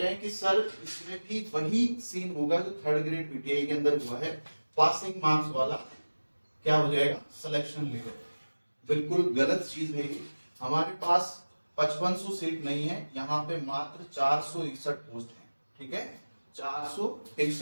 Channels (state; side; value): inverted; both; correlation -1.00